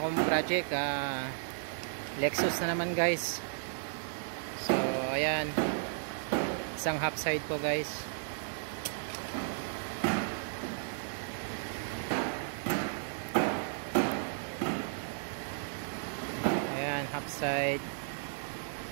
project, Lexus na naman guys. So ayan, isang half side po guys. Ayan, half side.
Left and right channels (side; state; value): left; silent; digital silence